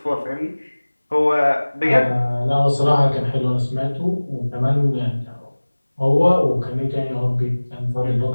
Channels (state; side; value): inverted; both; correlation -1.00